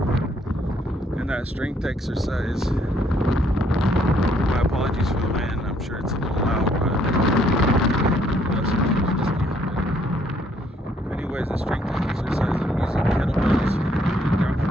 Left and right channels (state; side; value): normal; both; correlation 0.68